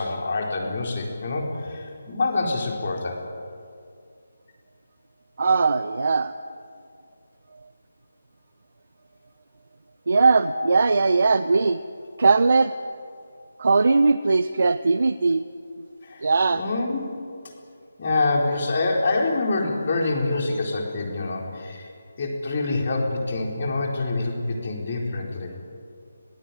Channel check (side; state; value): both; inverted; correlation -0.88